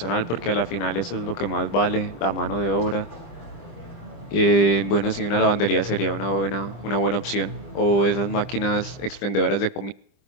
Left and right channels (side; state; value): right; late; 25 ms